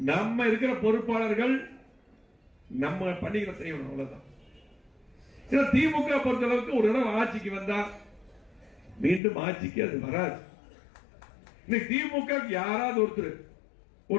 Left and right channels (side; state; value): right; drops out; at 9.2 s